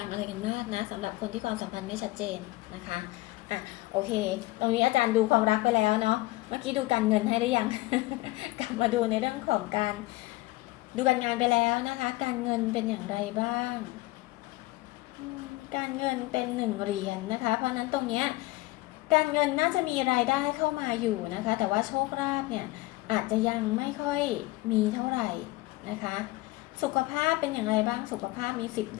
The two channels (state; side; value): quieter; right; 20.0 dB